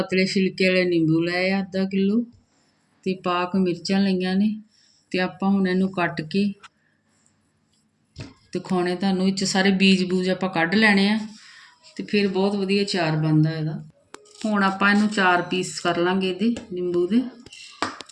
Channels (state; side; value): identical; both; correlation 1.00